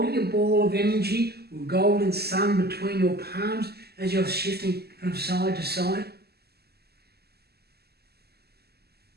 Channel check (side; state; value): left; late; 0.46 ms